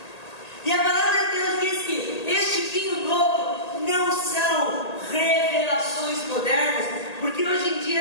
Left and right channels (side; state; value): right; late; 1.8 ms